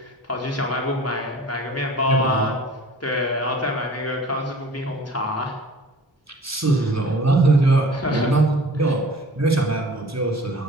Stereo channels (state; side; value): normal; both; correlation 0.46